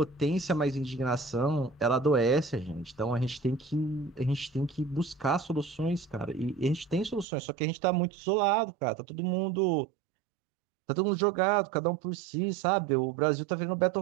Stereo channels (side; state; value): left; drops out; at 7.2 s